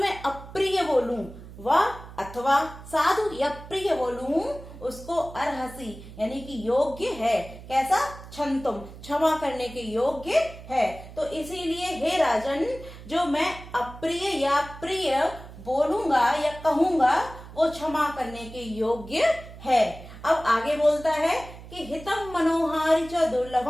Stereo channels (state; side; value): noise; right; hum, 16 dB below the sound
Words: अप्रिय बोलूं, व अथवा साधु या प्रिय बोलूं, उसको अर्हसि यानी कि योग्य है। कैसा? क्षन्तुम क्षमा करने के योग्य है। तो इसीलिए हे राजन, जो मैं अप्रिय या प्रिय बोलूंगा या कहूंगा, वो क्षमा करने के योग्य है। अब आगे बोलता है कि हितम मनोहारी च